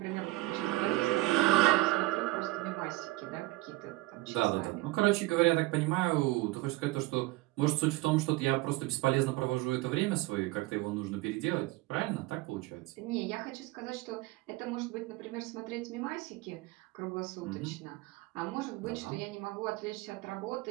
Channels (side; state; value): left; quieter; 20.0 dB